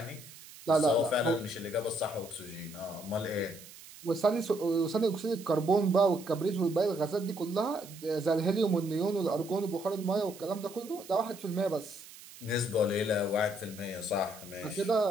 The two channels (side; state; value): right; noise; hiss, 18 dB below the sound